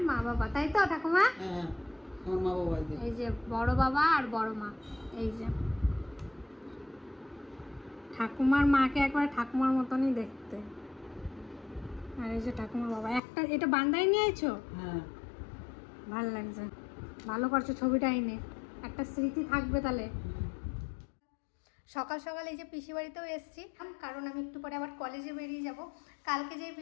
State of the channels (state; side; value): drops out; right; at 13.2 s